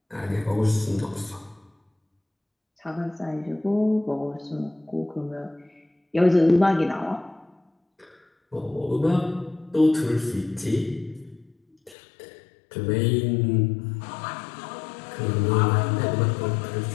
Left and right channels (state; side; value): drops out; right; at 12.0 s